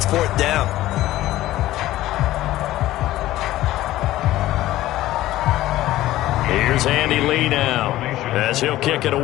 4th down. Here's Andy Lee now as he'll kick it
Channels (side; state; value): right; quieter; 15.4 dB